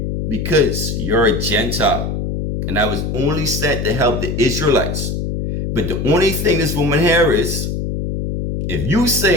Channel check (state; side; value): noise; left; hum, 3 dB below the sound